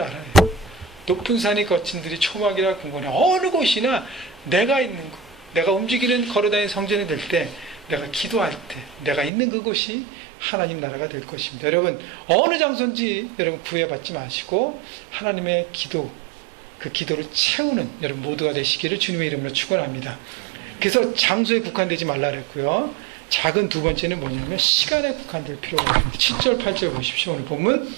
높은 산이 거친 들이 초막이라 궁궐에 어느 곳이나 내가 있는 곳, 내가 움직이는 걸어다니는 성전이 될 때, 내가 기도할 때 내가 있는 그곳이 하나님 나라가 될 것입니다. 여러분 어느 장소인지 여러분 구애받지 마시고 하나님의 기도, 그 기도를 채우는 여러분 모두가 되시기를 주님의 이름으로 축원합니다. 그래서 장소에 국한되지 말라 그랬고요. 작은 두 번째는 뭐냐면 시간에 국한될 필요가 없습니다. 7절 8절 보십시오. 오늘 본문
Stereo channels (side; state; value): left; drops out; at 9.3 s